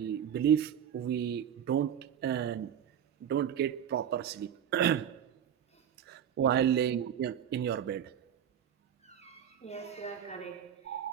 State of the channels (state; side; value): quieter; left; 9.2 dB